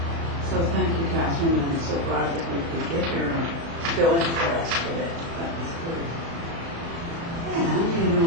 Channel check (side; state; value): left; late; 36 ms